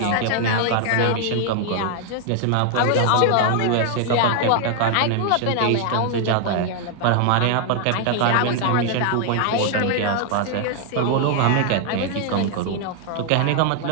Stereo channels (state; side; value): different; both; correlation 0.00